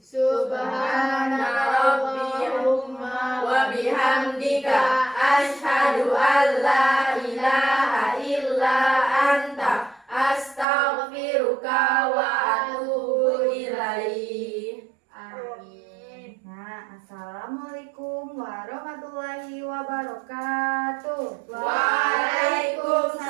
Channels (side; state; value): left; drops out; at 10.7 s